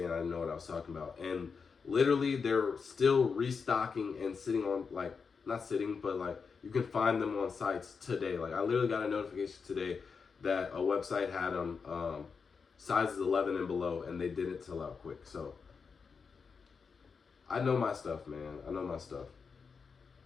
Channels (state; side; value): quieter; right; 5.5 dB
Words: I didn't know what I was talking about. And literally, they're still restocking and sitting on like, not sitting, but like you can find them on sites today. Like I literally got a notification today that a website had them sizes 11 and below, and they didn't sell out quick. So I know my stuff, man. I know my stuff.